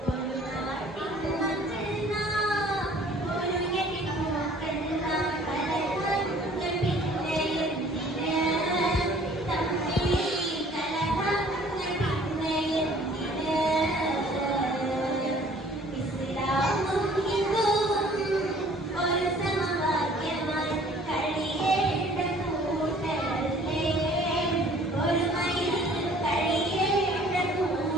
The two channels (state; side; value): normal; both; correlation 0.54